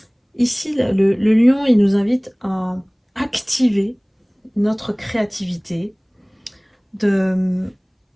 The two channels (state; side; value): identical; both; correlation 1.00